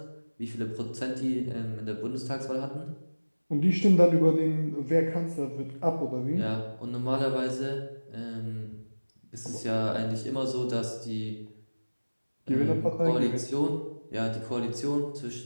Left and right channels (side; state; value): both; inverted; correlation -1.00